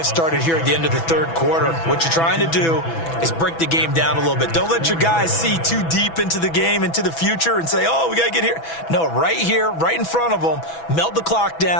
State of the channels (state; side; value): late; right; 6.1 ms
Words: started here at the end of the 3rd quarter. What you're trying to do is break the game down a little bit. Don't let your guys see too deep into the game, into the future, and say, oh, we got to get here. No, right here, right in front of them, melt the clock